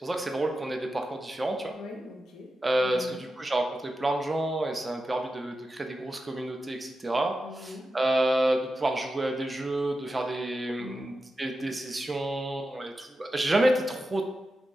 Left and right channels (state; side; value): normal; both; correlation 0.91